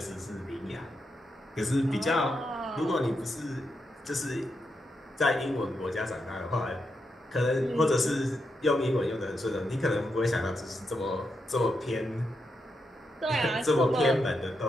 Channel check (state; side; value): normal; both; correlation 0.84